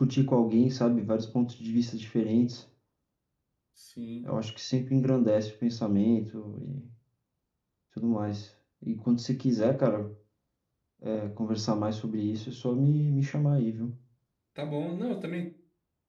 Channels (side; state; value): both; identical; correlation 1.00